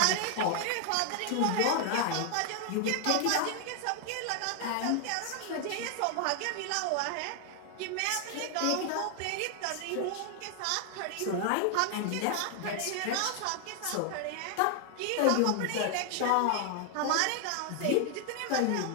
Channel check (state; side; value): different; both; correlation 0.00